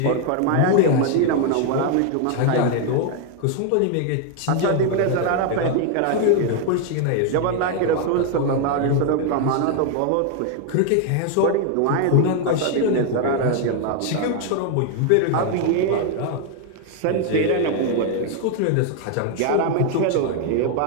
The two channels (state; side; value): different; both; correlation 0.00